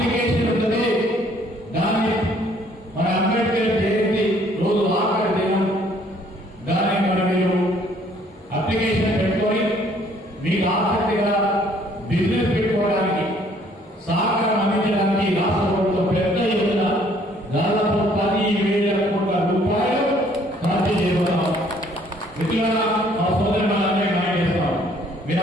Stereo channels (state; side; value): normal; both; correlation 0.61